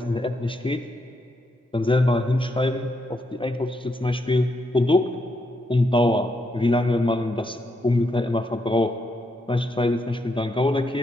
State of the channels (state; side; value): normal; both; correlation 0.79